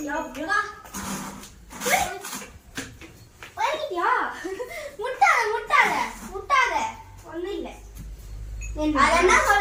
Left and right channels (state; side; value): identical; both; correlation 1.00